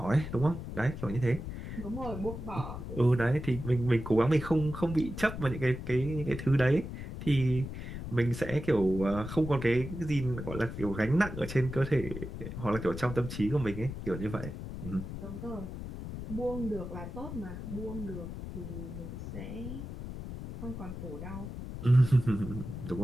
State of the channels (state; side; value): noise; left; rumble, 8 dB below the sound